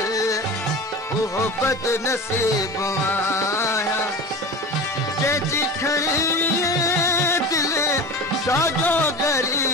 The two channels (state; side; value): normal; both; correlation 0.32